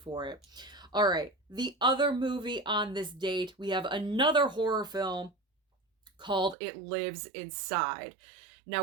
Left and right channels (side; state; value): left; drops out; at 6.6 s